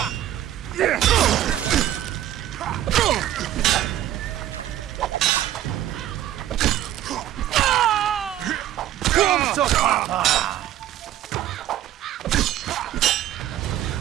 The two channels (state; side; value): quieter; left; 12.6 dB